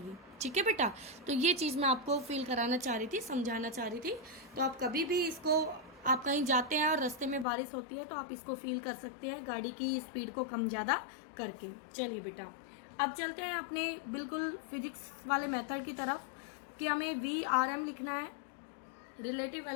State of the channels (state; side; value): drops out; right; at 7.5 s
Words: ठीक है बेटा, तो ये चीज़ मैं आपको फील कराना चाह रही थी, समझाना चाह रही थी। तो आप कभी भी इसको, आप कहीं जाते हैं और रास्ते में बारिश होती है तो आप इसको फील कर सकते हैं गाड़ी की स्पीड को कम ज़्यादा करके। चलिए बेटा, अब चलते हैं अपने बिल्कुल फिजिक्स वाले मेथड की तरफ कि हमें VRM लिखना है, relative